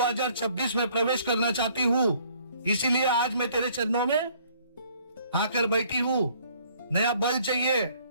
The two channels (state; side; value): inverted; both; correlation -0.60